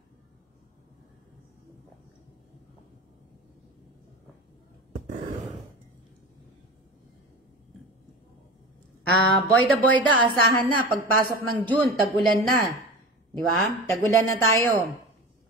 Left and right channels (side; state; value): both; normal; correlation 0.30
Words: Boyda, asahan na, pagpasok ng June, tag-ulan na. Di ba? Tagulan na tayo.